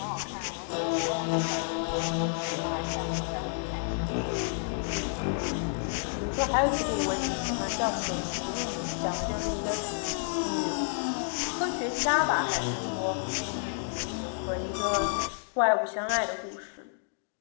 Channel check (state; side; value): silent; right; digital silence